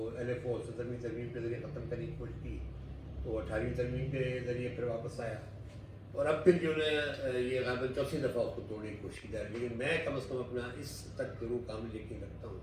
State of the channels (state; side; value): identical; both; correlation 1.00